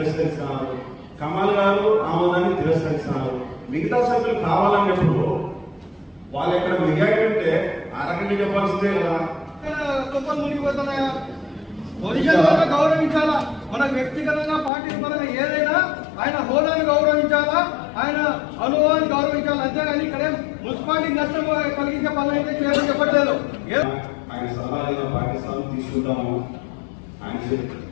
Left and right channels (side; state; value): right; drops out; at 14.7 s